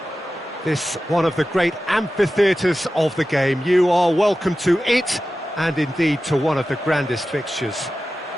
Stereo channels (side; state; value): both; normal; correlation 0.94